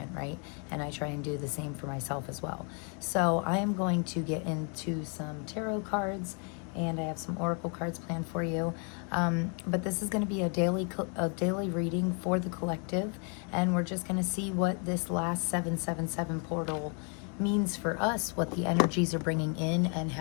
right? And I try and do the same for myself as well. So I am going to get into some tarot cards, and I have some oracle cards planned for you. But this is going to be a daily reading for the collective, and we're just going to see what this last 777 portal means for us, what the energies are bringing in, and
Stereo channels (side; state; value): right; quieter; 38.7 dB